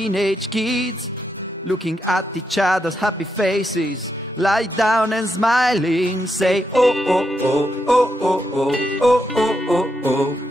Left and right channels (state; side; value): normal; both; correlation 0.82